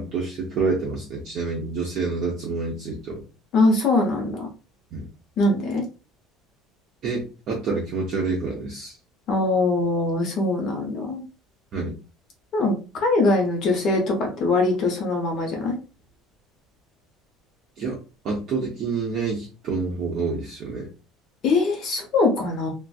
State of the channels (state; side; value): normal; both; correlation 0.49